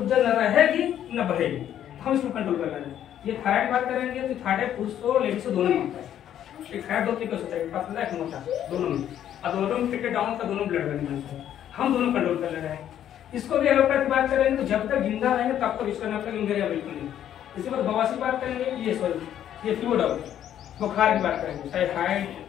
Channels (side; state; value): right; quieter; 10.6 dB